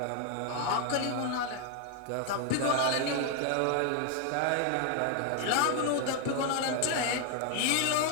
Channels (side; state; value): both; different; correlation 0.00